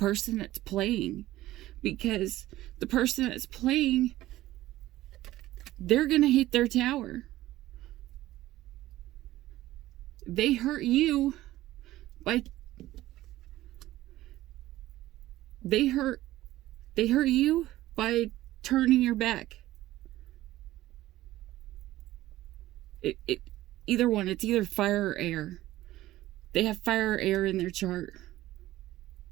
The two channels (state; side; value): quieter; left; 15.7 dB